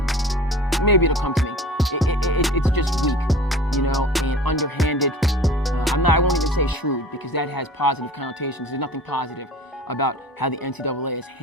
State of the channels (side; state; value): both; normal; correlation 0.42